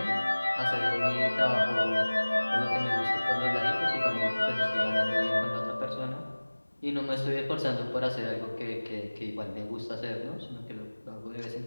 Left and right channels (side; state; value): both; inverted; correlation -1.00